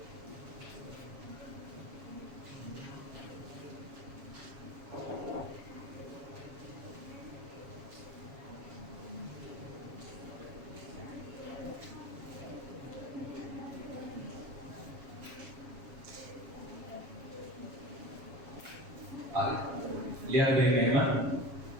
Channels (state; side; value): late; left; 7.3 ms